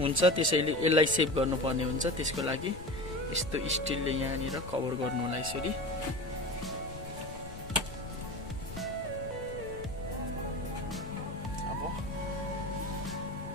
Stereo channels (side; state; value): left; noise; rumble, 13 dB below the sound